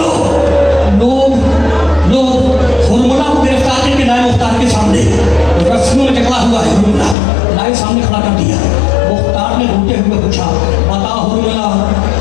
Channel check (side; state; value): right; drops out; at 7.2 s